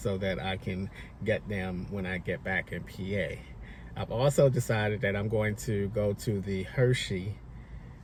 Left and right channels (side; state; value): both; identical; correlation 1.00